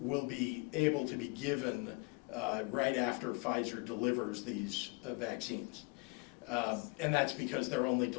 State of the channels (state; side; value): quieter; right; 32.5 dB